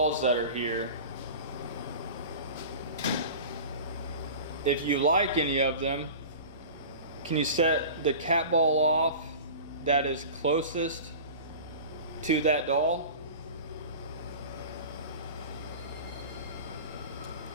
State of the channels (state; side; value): inverted; both; correlation -0.36